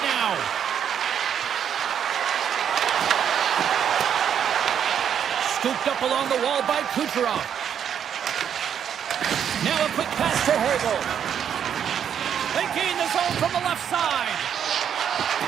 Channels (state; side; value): quieter; left; 8.6 dB